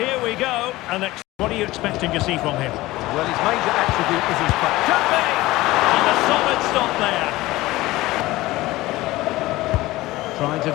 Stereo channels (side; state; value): right; quieter; 18.4 dB